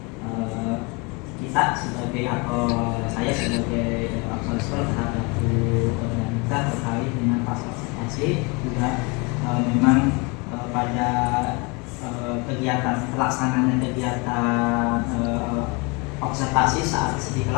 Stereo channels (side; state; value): right; quieter; 29.4 dB